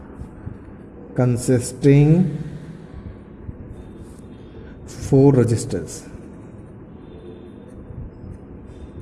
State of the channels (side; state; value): both; identical; correlation 1.00